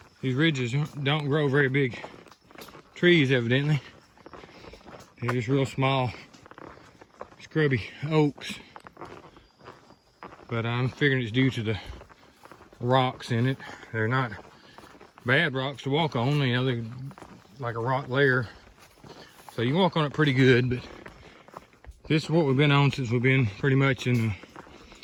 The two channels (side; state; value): both; identical; correlation 1.00